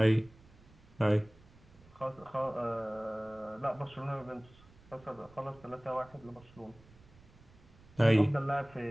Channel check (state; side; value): noise; right; rumble, 25 dB below the sound